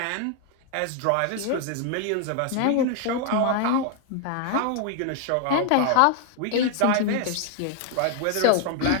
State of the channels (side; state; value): both; different; correlation 0.00